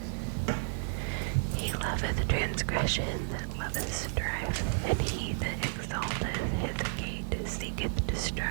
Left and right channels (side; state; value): left; silent; digital silence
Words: He loveth transgression that loveth strife, and he that exalteth his gate seeketh